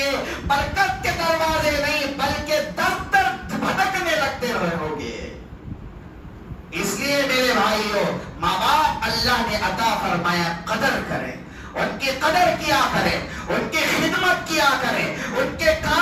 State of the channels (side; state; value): both; identical; correlation 1.00